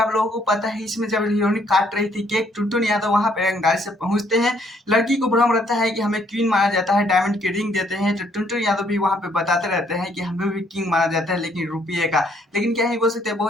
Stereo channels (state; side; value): normal; both; correlation 0.67